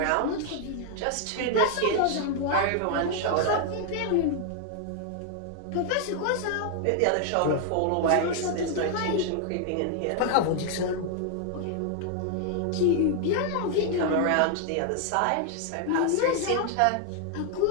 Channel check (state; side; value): different; both; correlation 0.00